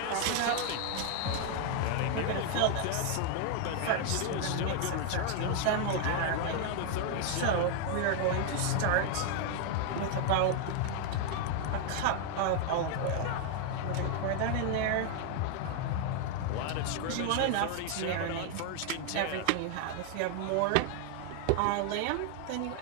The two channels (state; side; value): different; both; correlation 0.00